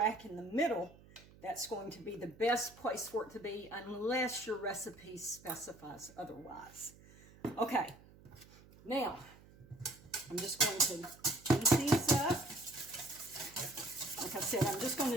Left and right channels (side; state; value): right; noise; hum, 23 dB below the sound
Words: in the middle, that's going to be the best place for it to be, unless your recipe specifies otherwise. Okay, now I'm just going to heat these up. Like I said, I'm just going to